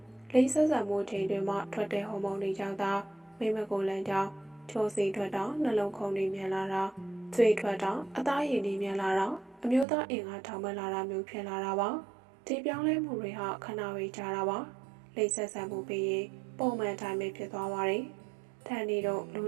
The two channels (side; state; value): left; drops out; at 9.9 s